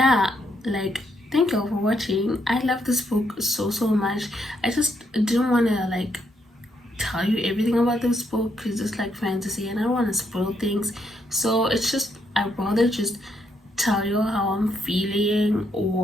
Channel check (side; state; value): both; normal; correlation 0.76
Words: like, thank you all for watching. I love this book so much. I just didn't want to like tell you everything about this book because it's like fantasy and I don't want to spoil things. So it's just, I'd rather just tell you how I'm feeling,